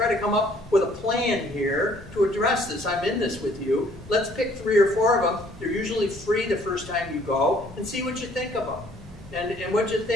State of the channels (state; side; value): normal; both; correlation 0.60